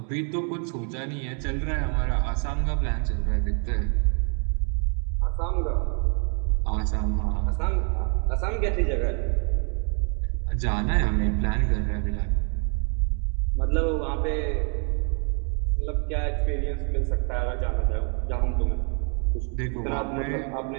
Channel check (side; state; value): left; quieter; 38.4 dB